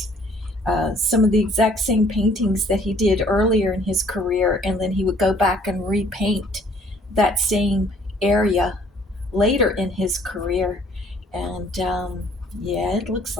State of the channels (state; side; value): normal; both; correlation 0.59